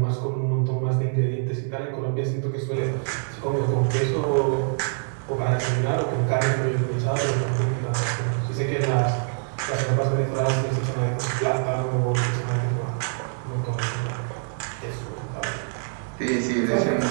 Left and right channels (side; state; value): left; silent; 62 dB below the other